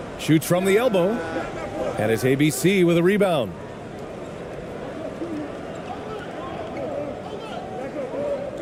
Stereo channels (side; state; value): both; identical; correlation 1.00